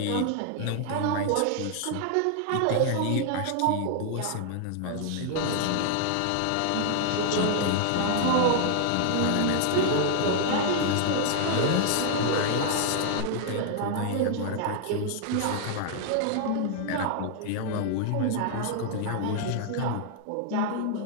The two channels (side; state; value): both; different; correlation 0.00